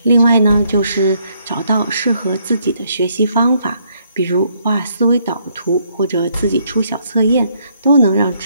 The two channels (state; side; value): inverted; both; correlation -0.70